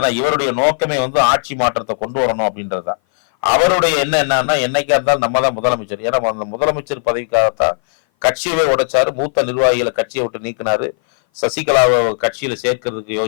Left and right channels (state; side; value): silent; right; 58 dB below the other